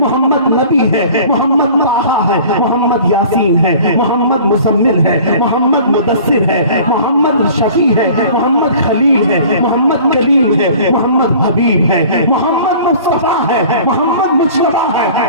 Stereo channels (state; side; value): inverted; both; correlation -0.46